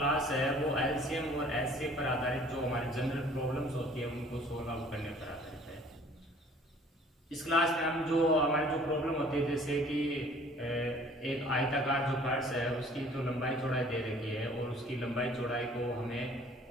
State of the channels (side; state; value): both; normal; correlation 0.53